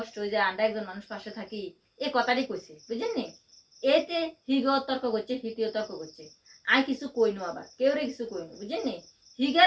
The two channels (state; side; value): identical; both; correlation 1.00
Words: হয়ে যায়, আন্ডা একজন মানুষ পাশে থাকি, এই কথাটাই কইছে, বুঝলেন নি? এতে হিগো তর্ক করছে, হিতিও তর্ক করছে। আই কিছু কইনু, আবার কেউ রে কিছু কইনু, বুঝলেন নি?